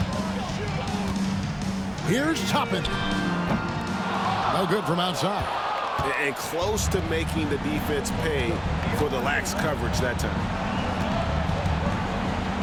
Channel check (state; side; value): identical; both; correlation 1.00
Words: Here's Toppin. No good from outside. And close to making the defense pay for the lax coverage that time.